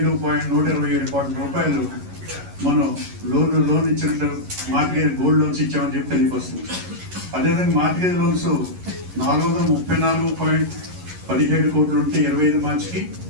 కోట్ల రూపాయలు మనం లోన్ ఇచ్చినట్టు మార్టిగేజ్ గోల్డ్ లోన్స్ ఇచ్చామని చెప్పి తెలియవస్తుంది. అదేవిధంగా మార్టిగేజ్ లోన్స్ 434.17 కోట్లు ఉంటే 25 మార్చికి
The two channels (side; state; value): left; late; 11 ms